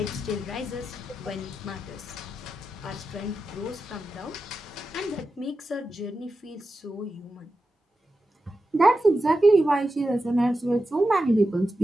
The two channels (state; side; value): normal; both; correlation 0.90